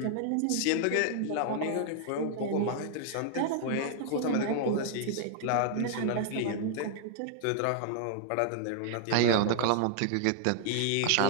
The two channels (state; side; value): different; both; correlation 0.00